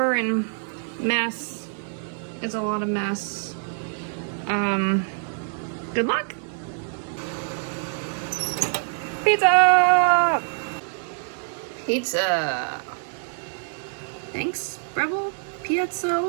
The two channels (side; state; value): left; silent; digital silence